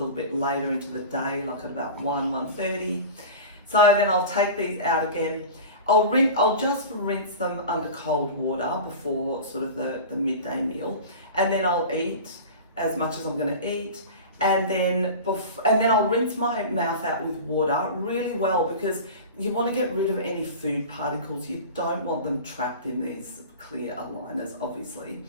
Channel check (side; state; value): both; inverted; correlation -0.33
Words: bit later into the day, like at about 1:30. So then I'll take these out again. I'll just rinse them under cold water before sort of the midday meal, and then I'll eat as much as I'm going to eat, and then I'll rinse my mouth out with water really well, because you want to get rid of any food particles. You don't want them trapped in these clear aligners, obviously.